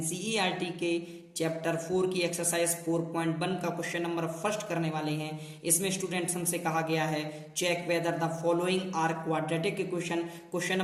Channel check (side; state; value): both; identical; correlation 1.00